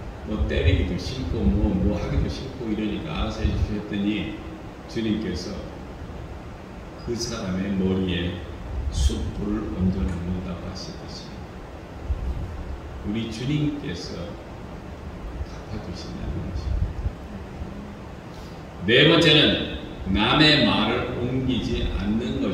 뭐 때리기도 싫고 뭐 하기도 싫고 이러니까 알아서 해주셨더니 주님께서 그 사람의 머리에 숯불을 얹어놓는다고 하시듯이 우리 주님께서 갚아주신다는 것입니다. 네 번째는 남의 말을 옮기지 않는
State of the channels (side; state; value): both; identical; correlation 1.00